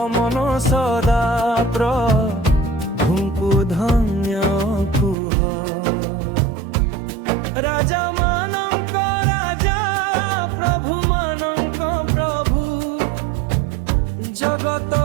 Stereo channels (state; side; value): drops out; left; at 5.2 s